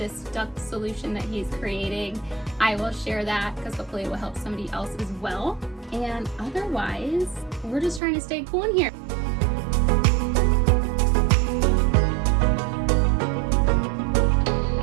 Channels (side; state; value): left; drops out; at 8.0 s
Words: duct solution that he's creating, I will share that, because hopefully it will help somebody else as well. And otherwise, we're just trying to stay cool in here.